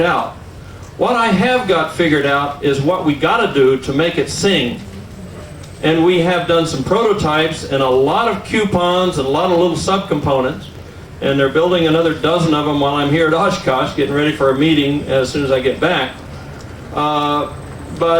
out. What I have got figured out is what we got to do to make it sing. And we have done some prototypes and a lot of coupons and a lot of little subcomponents. And they're building another dozen of them while I'm here at Oshkosh, getting ready for a meeting as soon as I get back.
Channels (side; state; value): both; identical; correlation 1.00